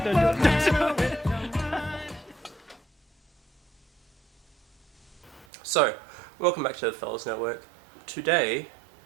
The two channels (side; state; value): left; drops out; at 5.5 s